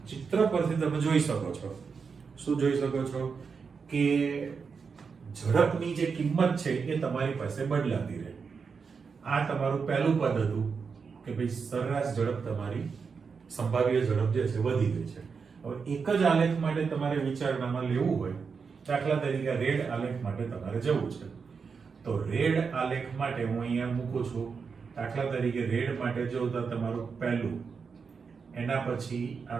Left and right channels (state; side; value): quieter; left; 5.5 dB